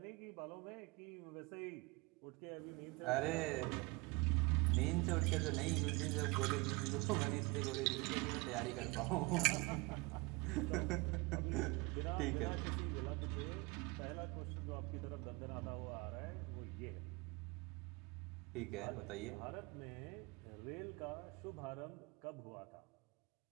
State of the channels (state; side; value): quieter; left; 25.4 dB